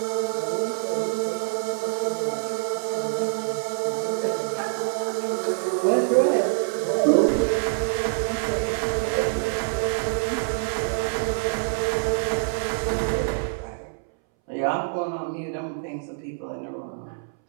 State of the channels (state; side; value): silent; left; 61 dB below the other